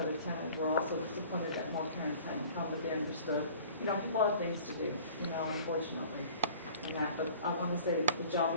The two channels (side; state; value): both; inverted; correlation -0.47